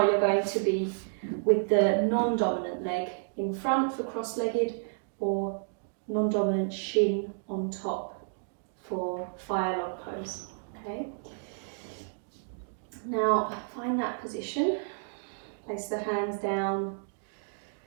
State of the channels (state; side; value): silent; left; digital silence